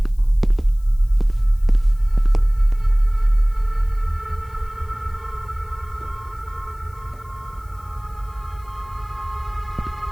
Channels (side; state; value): left; noise; hiss, 30 dB below the sound